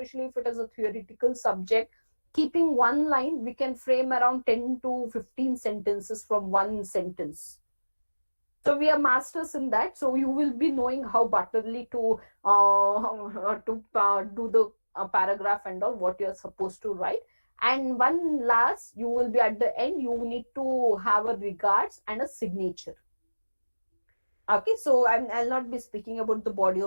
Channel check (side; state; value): both; inverted; correlation -1.00